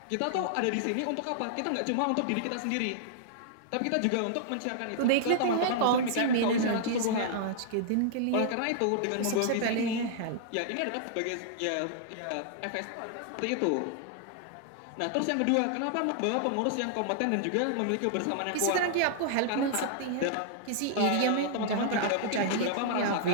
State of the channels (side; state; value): both; different; correlation -0.01